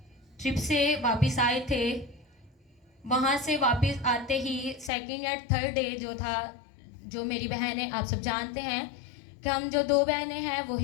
ट्रिप से वापस आए थे, वहाँ से वापस आते ही सेकंड या थर्ड डे जो था, जो मेरी बहनें आप सब जानते हैं कि हम जो दो बहनें हैं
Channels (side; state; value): right; drops out; at 4.9 s